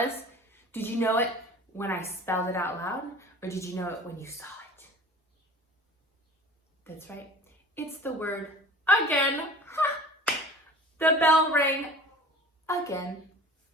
Did you know it when I spelled it out loud? Or did you know it when you saw it? That's right. It's the word again. Ha! The bell rang again.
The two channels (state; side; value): normal; both; correlation 0.42